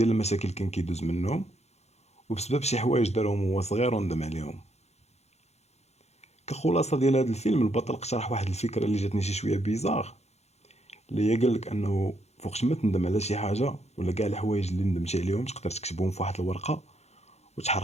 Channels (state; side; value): late; right; 0.31 ms